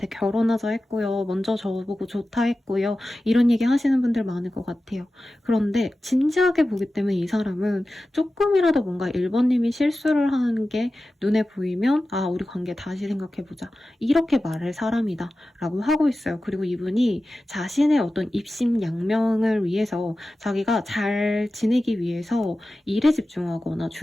결혼하자 했고요. 먼저 저보고 좋다 했고요. 이런 얘기 하시는 분들 많을 것 같아요. 그런데 진지하게 보기 때문에 이 사람은 조금이라도 뭔가 1번님이 실수를 하는 게 눈에 보이면 아 우리 관계 다시 생각해보자. 이렇게 말할 사람이다 라고 하고 있어요. 그리고 이분이 자신의 어떤 입심양명을 위해서 자기가 잘 지내기 위해서 일에 집중하거나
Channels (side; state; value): both; normal; correlation 0.95